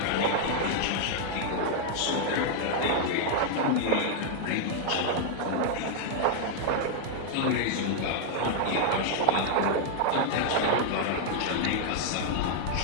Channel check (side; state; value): both; different; correlation -0.01